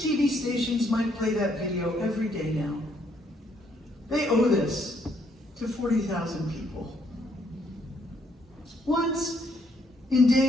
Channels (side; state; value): both; normal; correlation 0.70